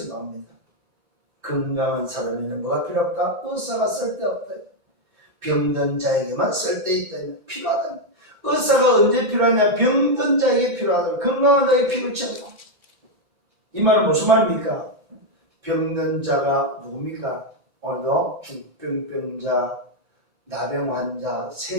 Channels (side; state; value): left; late; 5.9 ms